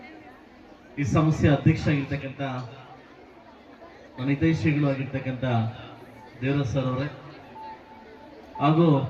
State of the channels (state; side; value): identical; both; correlation 1.00